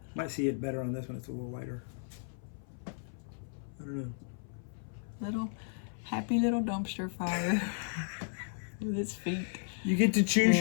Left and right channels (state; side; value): silent; right; 55 dB below the other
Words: Might see it better on this one. It's a little lighter. I don't know. Happy little dumpster fire with its feet. You get to choose